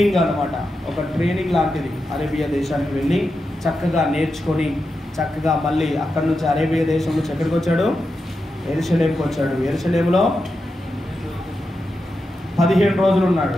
అన్నమాట, ఒక ట్రైనింగ్ లాంటిది. అరేబియా దేశానికి వెళ్ళి చక్కగా నేర్చుకొని చక్కగా మళ్ళీ అక్కడి నుంచి అరేబియా దేశం నుంచి ఎక్కడికి వచ్చాడు? యెరూషలేముకి వచ్చాడు. యెరూషలేములో 15 రోజులు ఉన్నాడు.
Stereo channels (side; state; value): both; normal; correlation 0.88